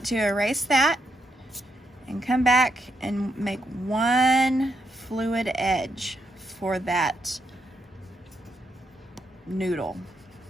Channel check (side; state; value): both; normal; correlation 0.79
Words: to erase that and come back and make one fluid edge for that noodle,